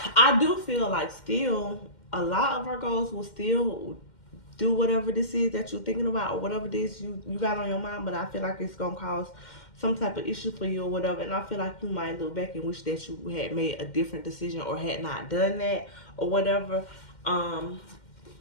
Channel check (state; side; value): late; right; 2.1 ms